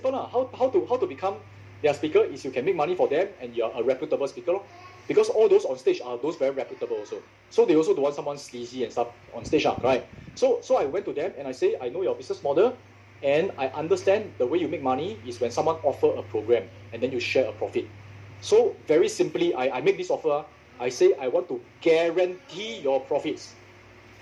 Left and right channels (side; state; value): both; identical; correlation 1.00